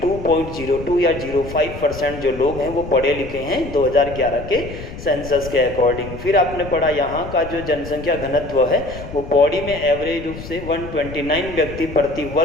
या 05% जो लोग हैं वो पढ़े लिखे हैं 2011 के सेंसस के अकॉर्डिंग। फिर आपने पढ़ा यहाँ का जो जनसंख्या घनत्व है वो पौड़ी में एवरेज रूप से 129 व्यक्ति प्रति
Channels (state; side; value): noise; left; rumble, 12 dB below the sound